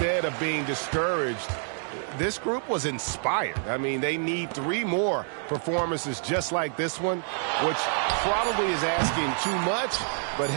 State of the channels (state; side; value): silent; left; 60 dB below the other